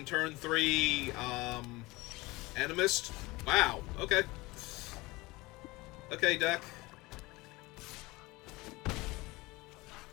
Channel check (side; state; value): right; quieter; 22.1 dB